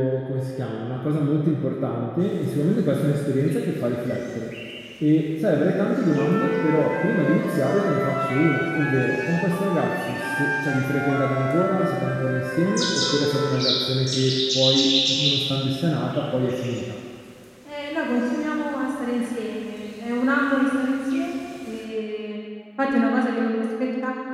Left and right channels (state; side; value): identical; both; correlation 1.00